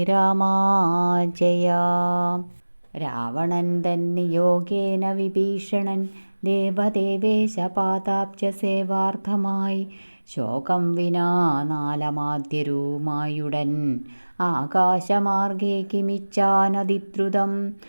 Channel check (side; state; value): both; inverted; correlation -1.00